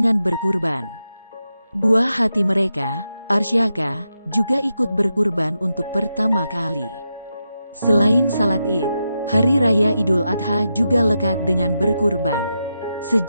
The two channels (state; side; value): inverted; both; correlation -0.87